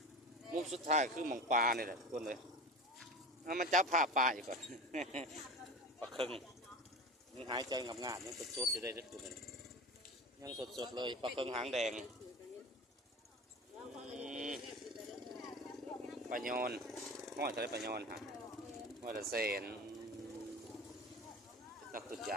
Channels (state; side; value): normal; both; correlation 0.31